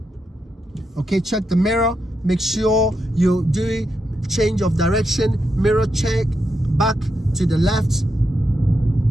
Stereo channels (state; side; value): normal; both; correlation 0.84